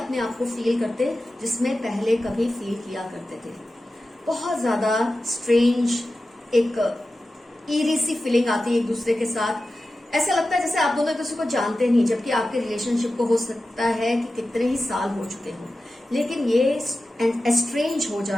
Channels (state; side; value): normal; both; correlation 0.93